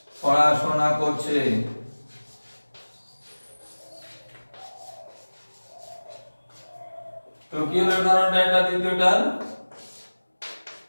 পড়াশোনা করছে। তো কি হলো উদাহরণটা, এটা দ্বিতীয়টা,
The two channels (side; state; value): both; inverted; correlation -1.00